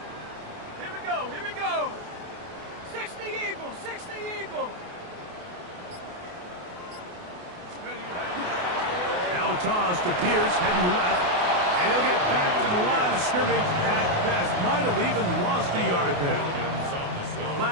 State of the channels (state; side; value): late; left; 28 ms